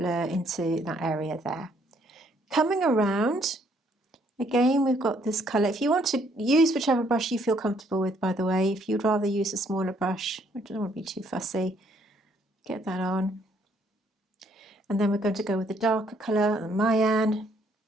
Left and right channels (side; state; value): both; normal; correlation 0.67